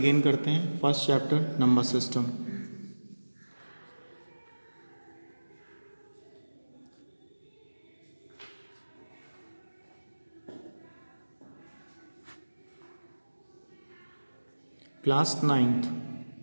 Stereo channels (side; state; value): both; inverted; correlation -1.00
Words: करते हैं। First chapter number system. Class 9th।